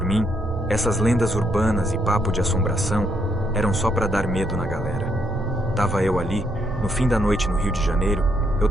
mim, essas lendas urbanas e papo de assombração eram só para dar medo na galera. Tava eu ali, no fim da noite no Rio de Janeiro, eu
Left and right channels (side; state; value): both; normal; correlation 0.74